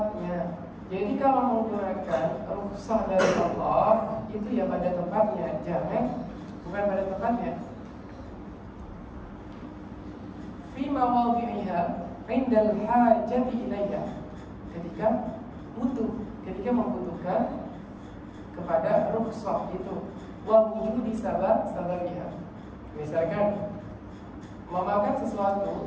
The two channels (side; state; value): both; identical; correlation 1.00